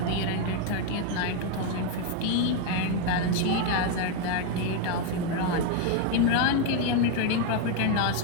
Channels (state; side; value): different; both; correlation 0.01